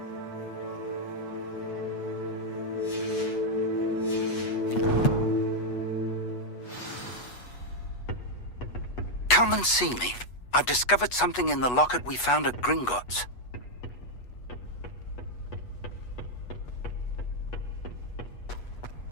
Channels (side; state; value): right; late; 8.2 ms